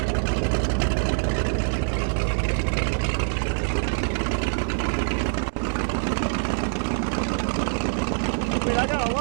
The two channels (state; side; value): silent; left; 62 dB below the other